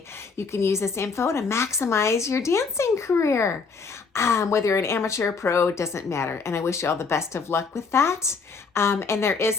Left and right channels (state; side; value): quieter; right; 4.8 dB